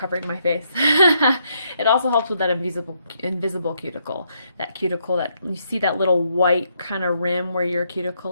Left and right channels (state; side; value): inverted; both; correlation -0.75